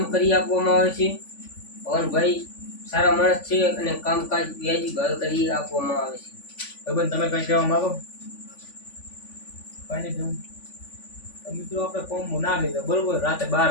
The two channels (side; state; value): right; late; 3.5 ms